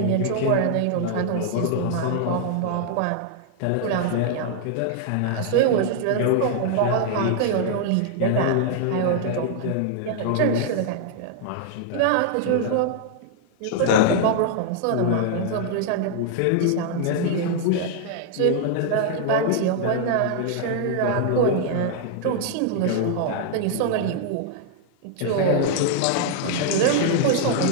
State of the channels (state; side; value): different; both; correlation -0.01